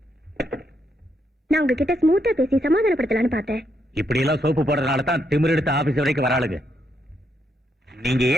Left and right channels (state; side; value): normal; both; correlation 0.78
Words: நான் உங்ககிட்ட ஸ்மூத்தா பேசி சமாதானப்படுத்தலான்னு பார்த்தேன். இப்படி எல்லாம் சோப்பு போடுறதுனால தான் திமிர் எடுத்து ஆபீஸ் வரைக்கும் வராளுங்க. நீங்க